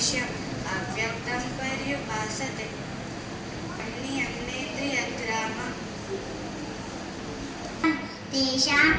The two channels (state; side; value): identical; both; correlation 1.00